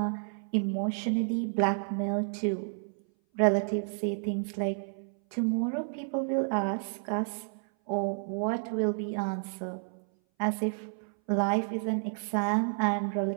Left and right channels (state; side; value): silent; left; 57 dB below the other